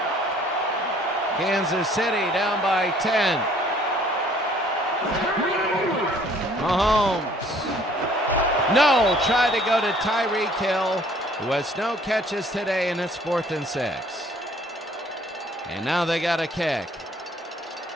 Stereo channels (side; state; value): both; normal; correlation 0.58